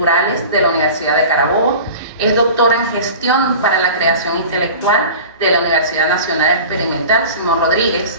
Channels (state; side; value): inverted; both; correlation -0.38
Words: de la Universidad de Carabobo. Es doctora en Gestión para la Creación Intelectual de la Universidad Nacional Experimental Simón Rodríguez.